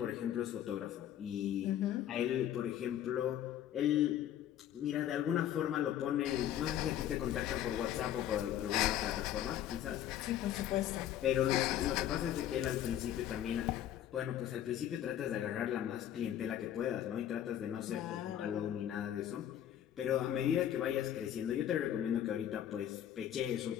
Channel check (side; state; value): right; quieter; 11.1 dB